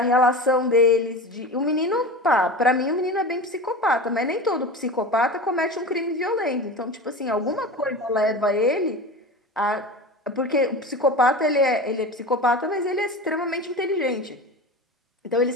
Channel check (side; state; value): both; normal; correlation 0.30